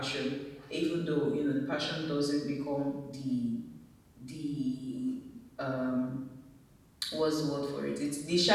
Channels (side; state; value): both; identical; correlation 1.00